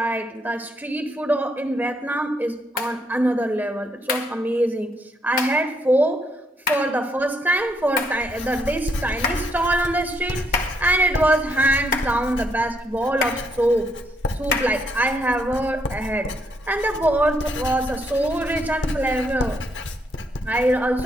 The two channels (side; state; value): both; normal; correlation 0.74